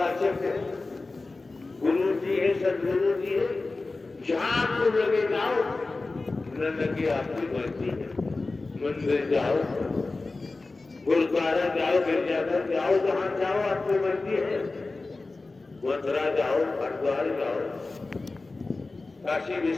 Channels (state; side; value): quieter; right; 3.5 dB